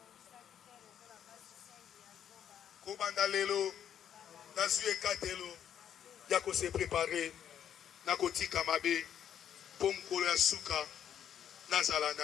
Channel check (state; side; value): quieter; right; 9.4 dB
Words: Kobanda lelo. Nazue katelo. Yako se préparer. Nakotika mabe. Pomkolo ya suka. Nazala